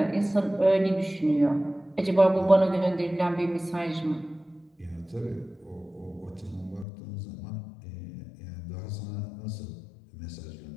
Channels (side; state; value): right; drops out; at 6.9 s